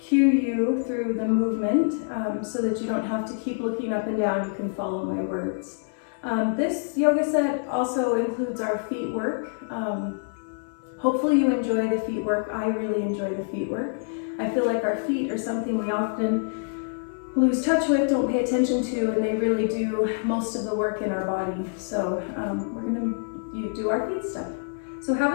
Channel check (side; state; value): right; silent; 58 dB below the other